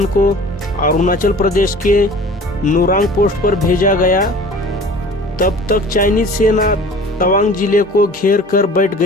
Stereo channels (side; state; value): both; normal; correlation 0.44